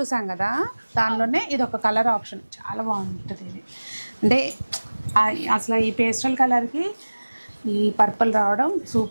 కదా, దానిలోనే ఇది ఒక కలర్ ఆప్షన్ చాలా బాగుంటుంది. ఇది అంటే అసలు ఈ పేస్టల్ కలర్కి ఈ పర్పుల్ రావడం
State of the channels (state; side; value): inverted; both; correlation -1.00